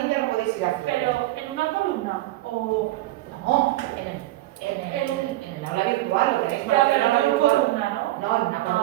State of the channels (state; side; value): quieter; left; 17.2 dB